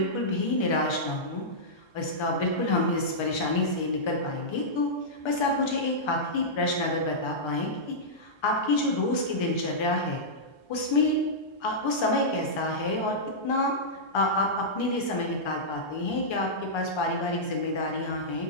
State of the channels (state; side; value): late; right; 1.3 ms